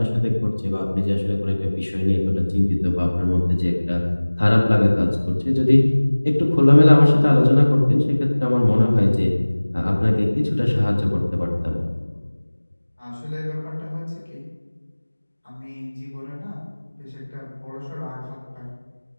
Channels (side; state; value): both; inverted; correlation -1.00